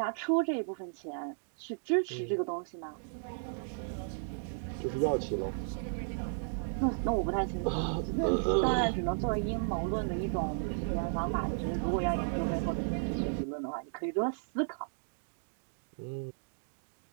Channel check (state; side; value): silent; left; digital silence